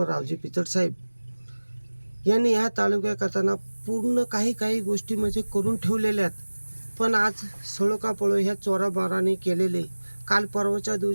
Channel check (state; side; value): inverted; both; correlation -1.00